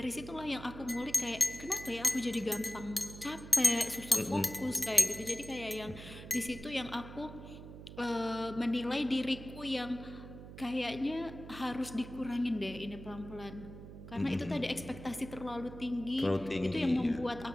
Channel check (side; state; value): right; noise; hum, 13 dB below the sound